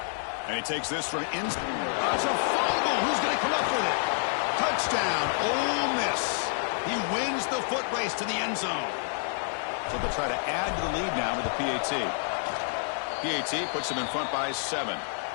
And he takes this from inside. It's a fumble. Who's going to come up with it? Touchdown, Ole Miss. He wins the foot race to the end zone. So they'll try to add to the lead now with the PAT. PAT puts them in front by 7.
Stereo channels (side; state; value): right; silent; 59 dB below the other